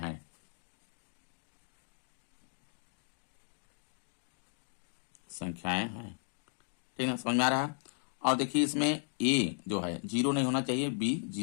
ठीक ना, समझ में आ रहा है। और देखिए इसमें ए जो है 0 नहीं होना चाहिए, बी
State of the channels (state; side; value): silent; right; digital silence